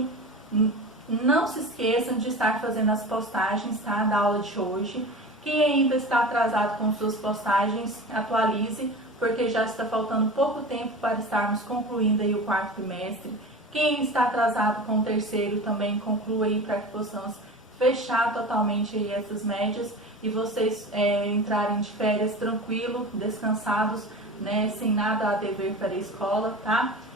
Não se esqueçam de estar fazendo as postagens, tá, da aula de hoje. Quem ainda está atrasado com suas postagens, atualize, porque já está faltando pouco tempo para estarmos concluindo aí o quarto trimestre. Quem está atrasado com o terceiro também conclua aí para que possamos fechar totalmente aí essas médias e vocês entrarem de férias tranquilo, descansados, né, sem nada a dever para a escola, tá?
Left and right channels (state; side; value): normal; both; correlation 0.33